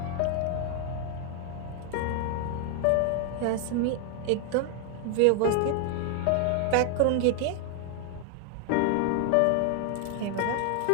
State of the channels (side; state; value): both; different; correlation 0.00